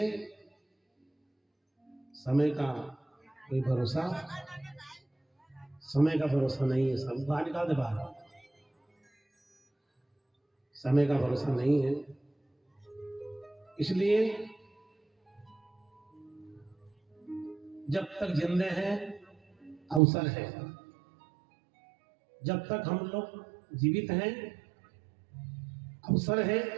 समय का कोई भरोसा, समय का भरोसा नहीं है। सब बाहर निकाल दे बाहर, समय का भरोसा नहीं है। इसलिए जब तक जिंदे हैं अवसर है, जब तक हम लोग जीवित हैं अवसर है,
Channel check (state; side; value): drops out; left; at 20.0 s